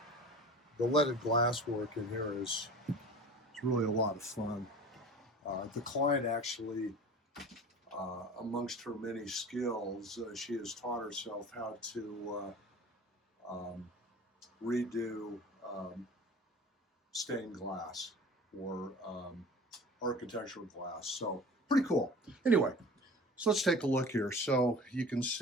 leaded glass work in here is really a lot of fun. The client actually, amongst her many skills, she has taught herself how to redo stained glass or architectural glass. So pretty cool. Anyway, so let's take a look here. So you can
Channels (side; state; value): both; normal; correlation 0.40